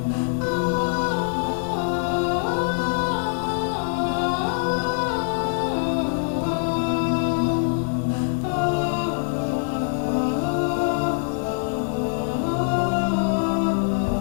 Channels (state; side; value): silent; right; 57 dB below the other